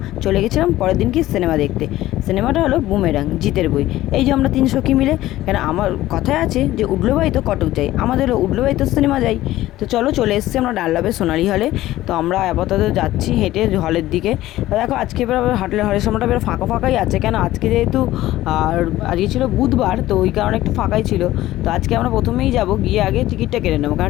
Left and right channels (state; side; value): quieter; right; 15.5 dB